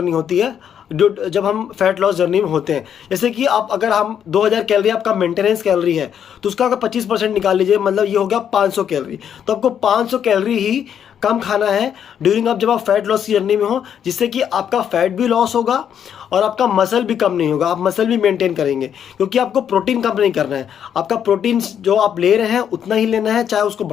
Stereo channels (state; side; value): quieter; right; 8.7 dB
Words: होती है जब हम फैट लॉस जर्नी में होते हैं। जैसे कि आप अगर हम 2000 कैलोरी आपका मेंटेनेंस कैलोरी है तो उसका अगर 25% निकाल लीजिए, मतलब ये हो गया 500 कैलोरी। तो आपको 500 कैलोरी ही कम खाना है ड्यूरिंग जब आप फैट लॉस की जर्नी में हो, जिससे कि आपका फैट भी लॉस होगा और आपका मसल भी कम नहीं होगा। आप मसल भी मेंटेन करेंगे क्योंकि आपको प्रोटीन कम नहीं करना है। आपका प्रोटीन जो आप ले रहे हैं उतना ही लेना है, चाहे उसको